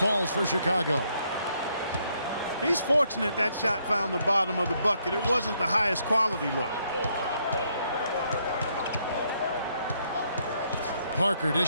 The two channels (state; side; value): inverted; both; correlation -0.73